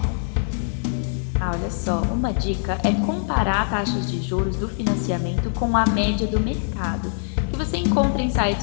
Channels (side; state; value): right; silent; 61 dB below the other